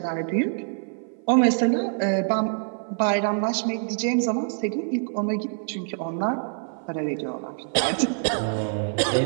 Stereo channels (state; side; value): silent; left; 56 dB below the other